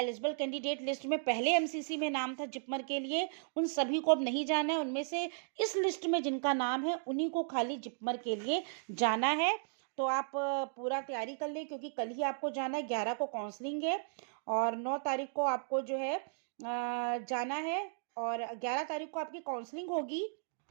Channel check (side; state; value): left; silent; digital silence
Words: कैंडिडेट लिस्ट में पहले MCC में नाम था जिपमर के लिए, उन सभी को अब नहीं जाना है। उनमें से इस लिस्ट में जिनका नाम है उन्हीं को खाली जिपमर के लिए जाना है। तो आप पूरा तैयारी कर लें, क्योंकि कल ही आपको जाना है, 11 को काउंसलिंग है और 9 तारीख को आपको जो है जाना है, और 11 तारीख को आपकी काउंसलिंग होगी।